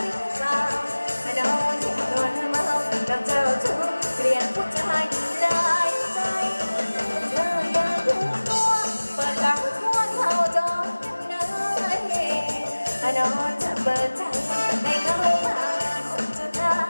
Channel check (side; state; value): both; inverted; correlation -1.00